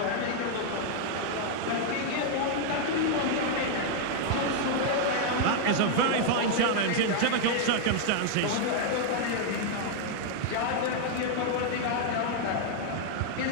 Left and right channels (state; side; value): different; both; correlation 0.00